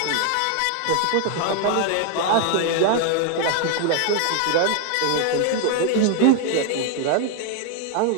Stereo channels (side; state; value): both; different; correlation 0.01